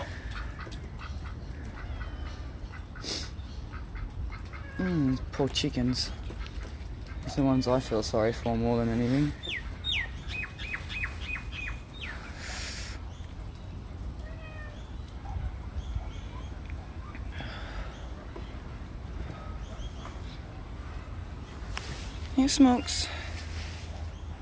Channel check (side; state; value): both; identical; correlation 1.00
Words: Poor chickens. It's the ones I feel sorry for more than anything. Here, Smokes.